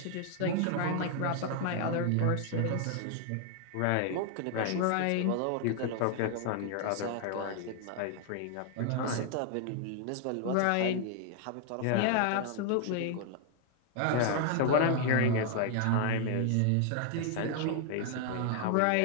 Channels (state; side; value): different; both; correlation 0.00